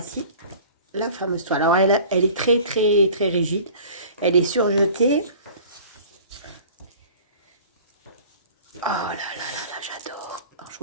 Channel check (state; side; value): inverted; both; correlation -0.45